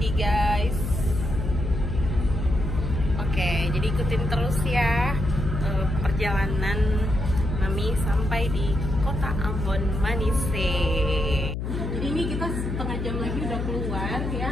guys. Oke, jadi ikutin terus ya perjalanan Mami sampai di kota Ambon Manise. Jadi ini kita setengah jam lagi udah keluar ya,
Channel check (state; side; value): noise; left; hum, 3 dB below the sound